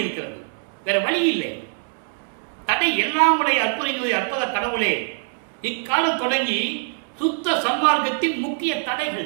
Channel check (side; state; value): left; silent; 59 dB below the other